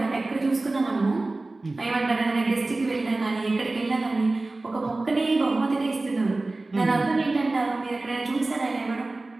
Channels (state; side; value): quieter; left; 3.1 dB